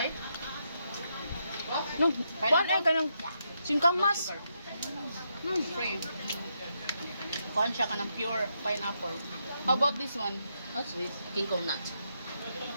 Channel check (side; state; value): both; inverted; correlation -0.81